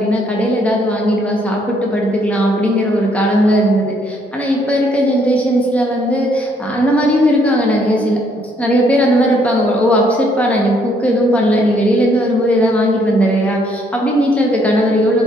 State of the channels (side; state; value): both; normal; correlation 0.68